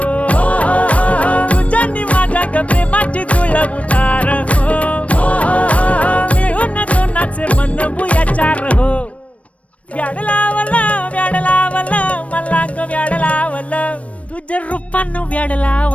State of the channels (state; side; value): late; right; 0.064 ms